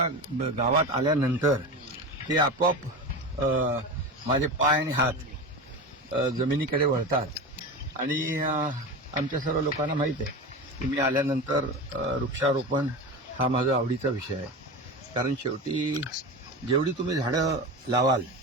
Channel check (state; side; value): normal; both; correlation 0.26